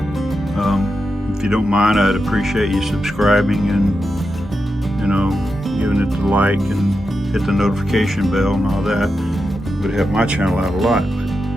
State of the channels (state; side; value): normal; both; correlation 0.88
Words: If you don't mind, I'd appreciate you subscribing and, you know, giving it the like and hit the notification bell and all that. It would help my channel out a lot.